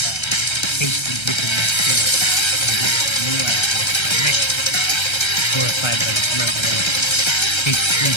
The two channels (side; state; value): right; late; 1.3 ms